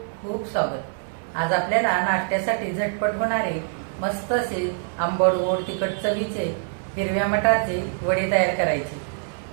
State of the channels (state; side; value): silent; left; 61 dB below the other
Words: खूप स्वागत. आज आपल्याला नाश्त्यासाठी झटपट होणारे मस्त असे आंबट गोड तिखट चवीचे हिरव्या मटारचे वडे तयार करायचे.